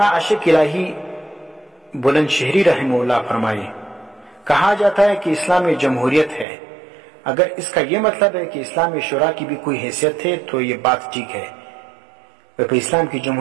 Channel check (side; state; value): left; drops out; at 6.5 s